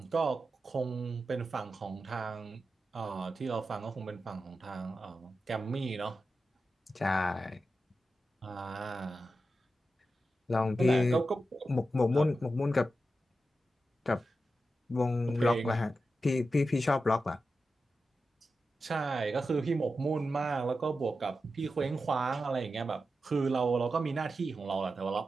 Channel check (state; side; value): normal; both; correlation 0.90